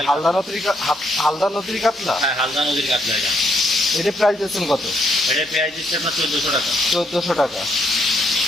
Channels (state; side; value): normal; both; correlation 0.73